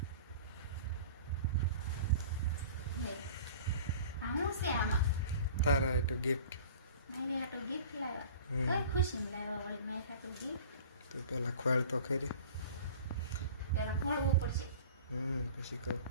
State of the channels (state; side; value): inverted; both; correlation -0.42